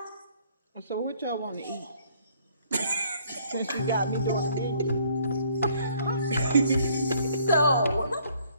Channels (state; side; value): inverted; both; correlation -0.62